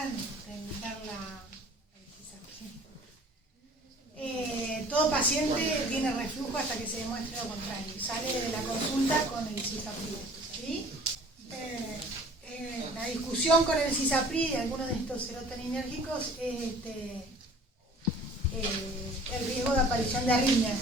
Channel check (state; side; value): normal; both; correlation 0.49